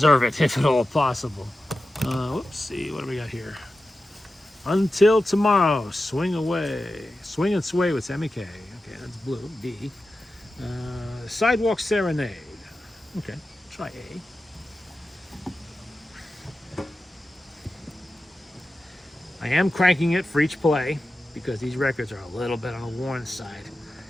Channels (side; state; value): both; normal; correlation 0.93